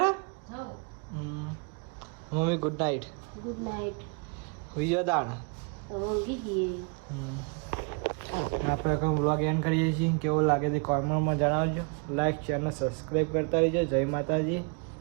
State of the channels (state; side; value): quieter; left; 35.1 dB